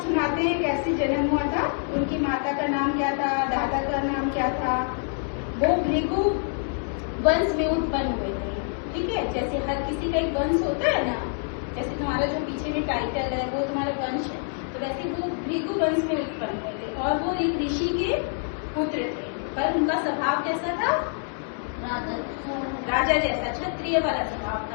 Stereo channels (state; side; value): silent; right; 61 dB below the other